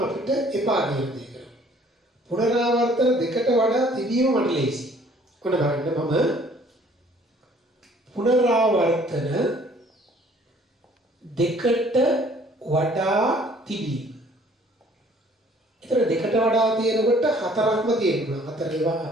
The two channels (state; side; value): normal; both; correlation 0.57